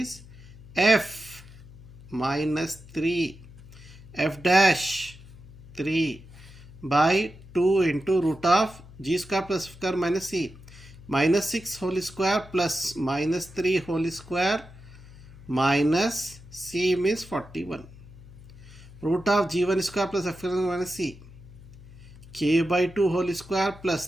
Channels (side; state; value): left; noise; hum, 19 dB below the sound